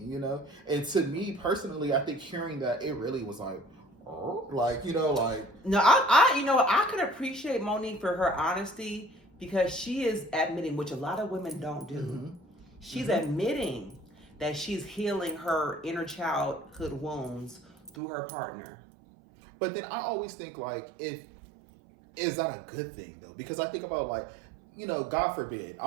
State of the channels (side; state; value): left; drops out; at 17.9 s